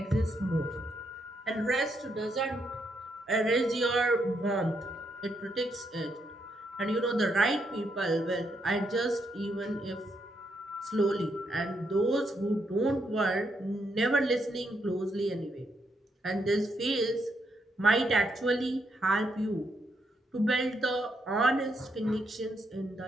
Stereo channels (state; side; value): normal; both; correlation 0.78